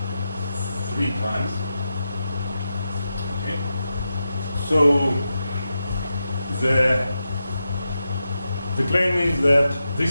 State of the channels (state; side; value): inverted; both; correlation -0.89